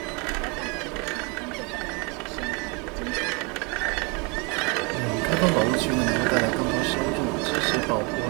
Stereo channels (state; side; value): quieter; left; 29.6 dB